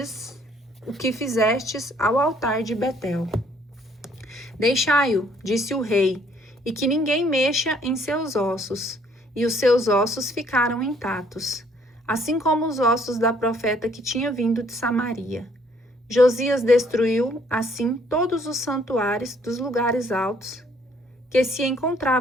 fizestes ao altar de Betel. Deixai-o, disse o rei, e que ninguém mexa em seus ossos. E os seus ossos ficaram intactos, assim como os ossos da profeta que tinha vindo de Samaria. Josias destruiu, assim, todos os santuários dos lugares altos que se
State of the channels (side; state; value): both; normal; correlation 0.64